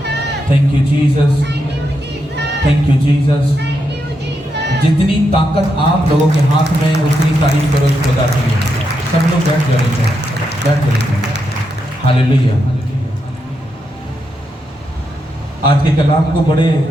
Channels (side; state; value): both; normal; correlation 0.83